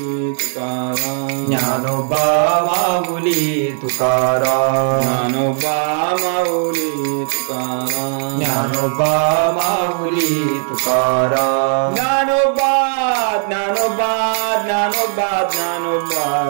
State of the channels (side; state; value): left; silent; digital silence